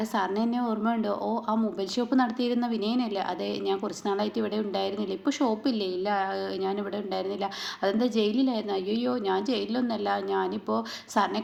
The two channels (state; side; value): identical; both; correlation 1.00